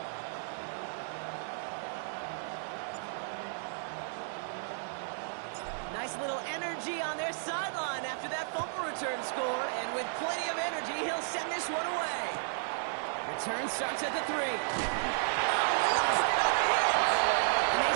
Nice little energy on their sideline after that fumble return scored. And with plenty of energy, he'll send this one away. Return starts at the 3. Oh, lost it on the hit. And they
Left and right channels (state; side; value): silent; left; 56 dB below the other